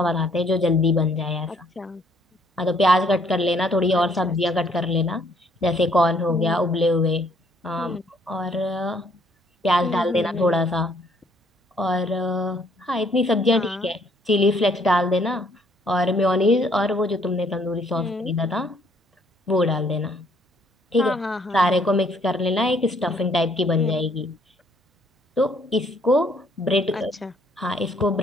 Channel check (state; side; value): normal; both; correlation 0.65